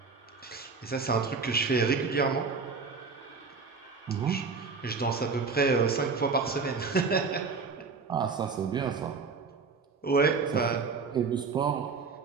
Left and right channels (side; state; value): left; quieter; 4.7 dB